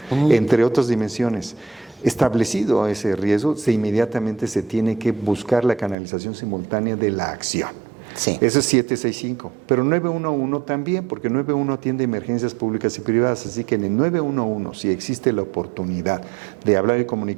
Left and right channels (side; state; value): left; drops out; at 6.0 s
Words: entre otras dimensiones. Establecido ese riesgo, inmediatamente se tiene que buscar la canalización simultánea de la acción. Sí. Eso es 765, pero 911 también, porque 911 atiende emergencias públicas y privadas, así que en el 911, si existe la oportunidad de hablar y